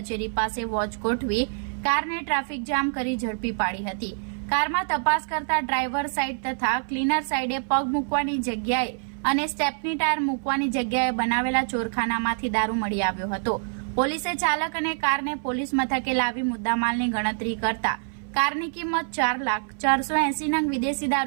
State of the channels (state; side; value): silent; left; 57 dB below the other